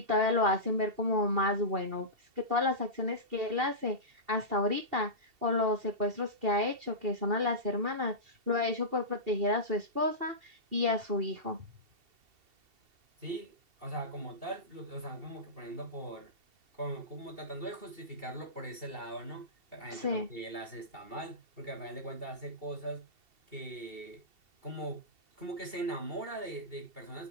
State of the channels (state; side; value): late; left; 2.7 ms